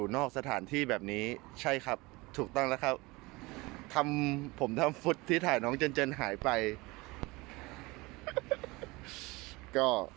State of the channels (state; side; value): quieter; left; 23.2 dB